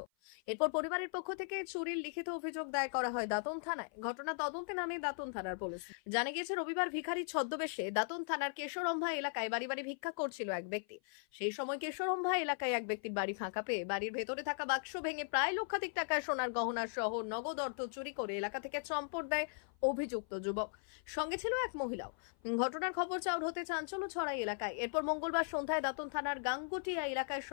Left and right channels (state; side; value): silent; right; 52 dB below the other